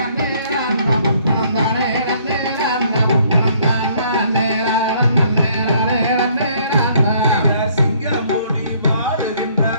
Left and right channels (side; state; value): both; inverted; correlation -0.63